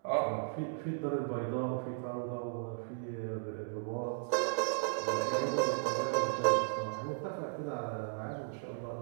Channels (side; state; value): left; silent; digital silence